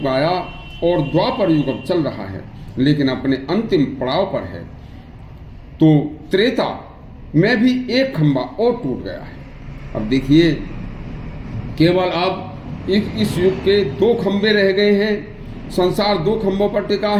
आया और द्वापर युग अब चल रहा है, लेकिन अपने अंतिम पड़ाव पर है। तो त्रेता में भी एक खंभा और टूट गया है। अब देखिए केवल अब इस युग के 2 खंभे रह गए हैं। संसार 2 खंभों पर टिका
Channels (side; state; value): both; identical; correlation 1.00